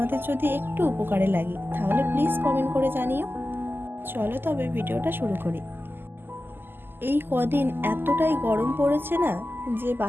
যদি একটু উপকারে লাগি তাহলে প্লিজ কমেন্ট করে জানিও। চলো তবে ভিডিওটা শুরু করি। এই কদিন এতটাই গরম পড়েছে না, যে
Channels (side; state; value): left; late; 0.098 ms